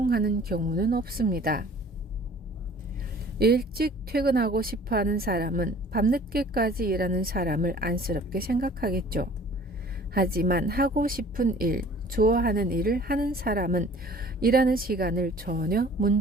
경우는 없습니다. 일찍 퇴근하고 싶어하는 사람은 밤늦게까지 일하는 사람을 안쓰럽게 생각하겠죠. 하지만 하고 싶은 일, 좋아하는 일을 하는 사람은 일하는 시간을 전혀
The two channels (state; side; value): normal; both; correlation 0.49